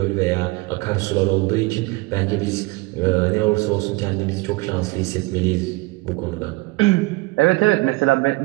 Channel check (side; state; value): left; quieter; 23.0 dB